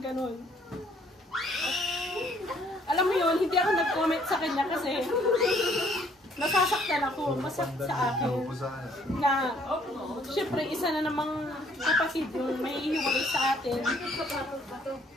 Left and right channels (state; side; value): normal; both; correlation 0.63